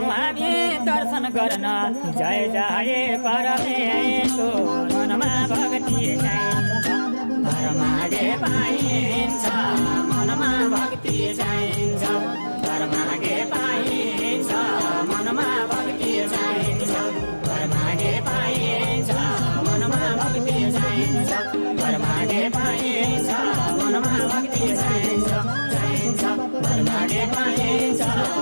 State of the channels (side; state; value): both; inverted; correlation -1.00